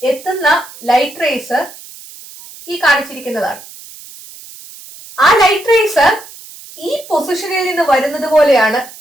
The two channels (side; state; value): right; noise; hiss, 18 dB below the sound